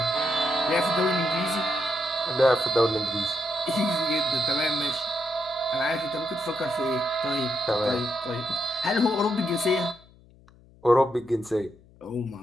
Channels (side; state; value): left; noise; hum, 26 dB below the sound